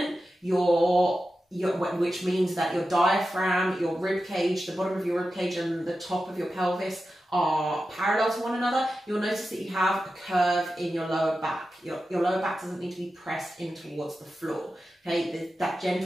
which means that your diaphragm, your rib cage, the bottom of your rib cage and the top of your pelvis are parallel to one another, you'll notice that you have a curve in your lower back. Your lower back doesn't need to be pressed in towards the floor. Okay, that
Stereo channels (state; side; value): normal; both; correlation 0.92